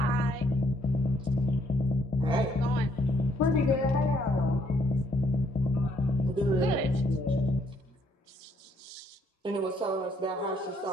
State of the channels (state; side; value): normal; both; correlation 0.69